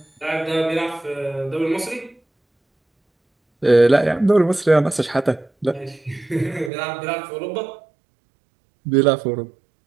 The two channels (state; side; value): drops out; left; at 6.7 s